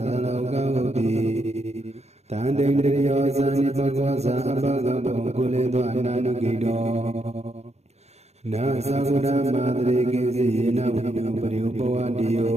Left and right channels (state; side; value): late; left; 0.31 ms